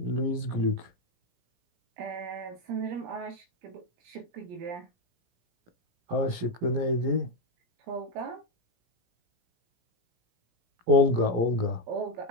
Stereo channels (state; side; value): late; left; 17 ms